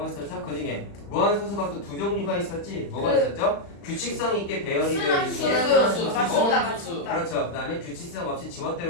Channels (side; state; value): right; late; 35 ms